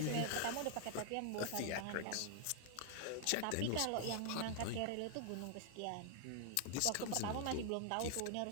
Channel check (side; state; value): both; different; correlation 0.00